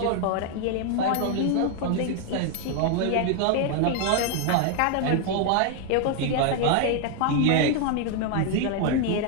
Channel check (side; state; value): both; different; correlation 0.00